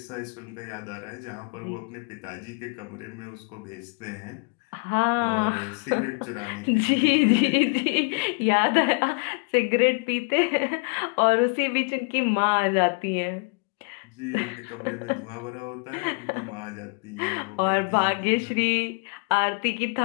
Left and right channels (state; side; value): quieter; right; 35.0 dB